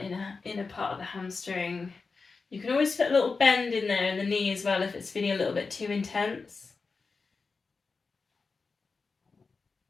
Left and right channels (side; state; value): right; quieter; 4.4 dB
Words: inner part of the hamstring. You can always put a little bend in there in the knee as well if it's feeling a little bit too intense.